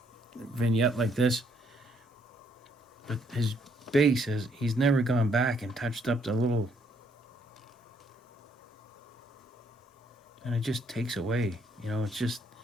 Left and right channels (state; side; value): normal; both; correlation 0.69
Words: vignette like this, but his base he's never gone back and touched up the little, and it just takes away, you know, it's just,